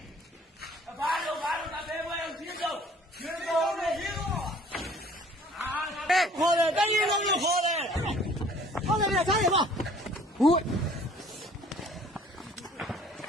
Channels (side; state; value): both; normal; correlation 0.54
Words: ခေါ်တယ်တကြီးလုံးလို့ခေါ်တယ်ဟုတ်တယ်ဗျာထားရပါဟုတ်